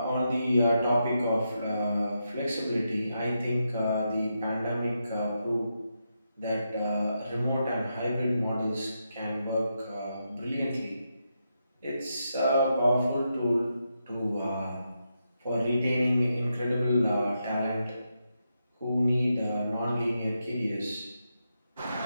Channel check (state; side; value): inverted; both; correlation -0.84